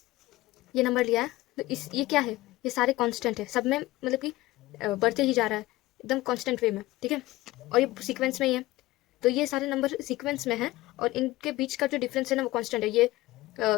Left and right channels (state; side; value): quieter; right; 18.1 dB